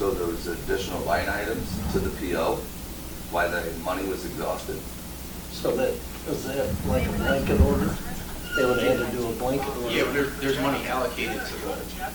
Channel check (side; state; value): both; identical; correlation 1.00